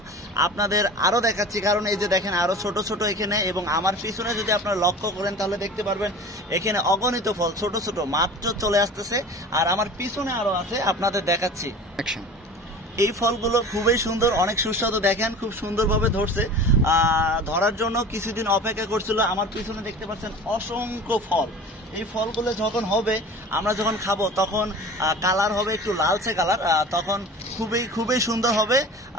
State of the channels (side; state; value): both; normal; correlation 0.38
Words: আপনাদের আরো দেখাচ্ছি, কারণ এই যে দেখেন আরো ছোট ছোট এখানে, এবং আমার পিছনে যদি আপনারা লক্ষ্য করেন তাহলে দেখতে পারবেন এখানে অগণিত ফল ছোট ছোট মাত্র চলে আসতেছে। আর আমার পিছনে আরো আছে, আপনাদের দেখাচ্ছি। এই ফলগুলো খুবই সুন্দর, অনেক সুস্বাদু। দেখেন খুব সুন্দরভাবে ধরছে, ধরার জন্য কিছুদিন অপেক্ষা করছিল। আমার পিছনে দেখতে পাচ্ছেন অসংখ্য ফল। এই ফলগুলো যখন হবে, আমরা যখন খাবো তখন কালার হবে একটু লালচে কালার, তখন খুবই সুন্দর হবে।